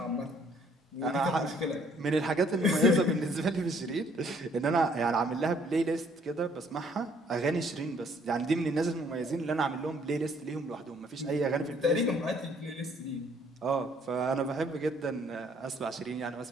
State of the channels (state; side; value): normal; both; correlation 0.63